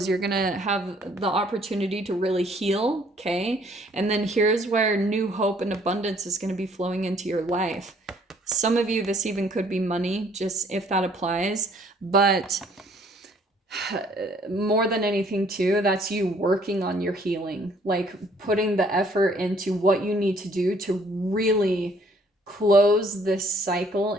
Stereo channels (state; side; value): normal; both; correlation 0.61